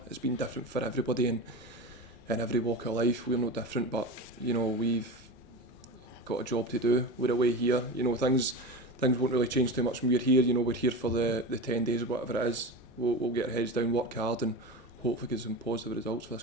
It's been different for everybody in every walk of life. We're no different, but you know we've got a job to do. We're away here. You know things won't really change too much when we're here. You know we're here for the 10 days or whatever it is. We'll get our heads down, work hard, and hopefully get some positive results for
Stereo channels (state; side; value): normal; both; correlation 0.26